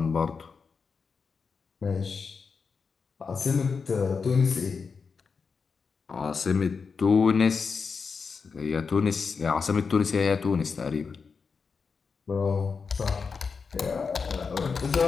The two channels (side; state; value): right; quieter; 5.3 dB